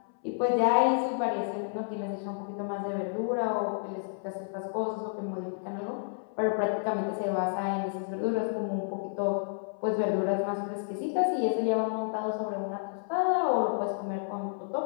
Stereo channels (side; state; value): right; silent; 57 dB below the other